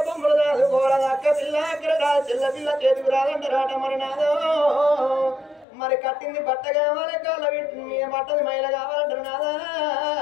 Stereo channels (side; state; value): right; drops out; at 5.7 s